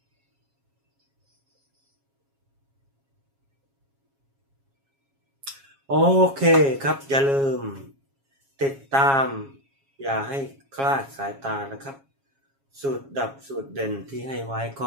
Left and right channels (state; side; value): late; left; 7.3 ms